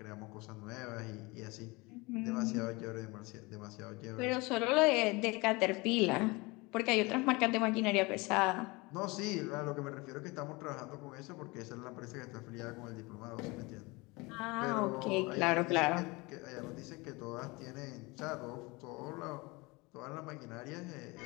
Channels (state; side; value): quieter; right; 24.9 dB